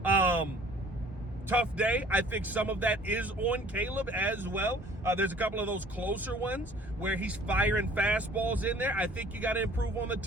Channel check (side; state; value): both; normal; correlation 0.53